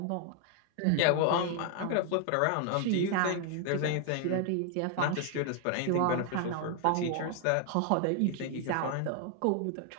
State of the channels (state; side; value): different; both; correlation 0.00